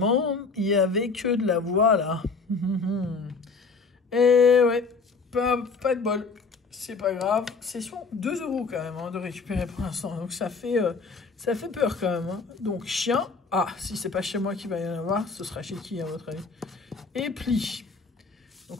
il n'y avait que de la voix là. Et ouais, pas de bol, c'est pas grave. C'est sur 2 € quand même de récupérer pour l'instant, donc ça fait peur quand même. Hein. Donc chien, si c'est pas chez moi qu'il va y en avoir, ce sera chez qui à votre avis? Et pli.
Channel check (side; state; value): right; quieter; 4.4 dB